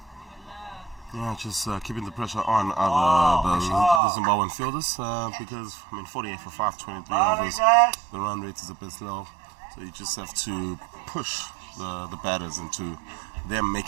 Yeah, just keeping the pressure on the Zimbabwean fielders because, 48 for 5, 23 overs, the run rate is a bit slow. So you just have to push the batters into them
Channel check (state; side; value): drops out; left; at 4.0 s